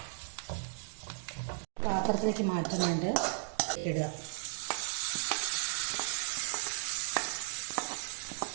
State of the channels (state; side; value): silent; left; digital silence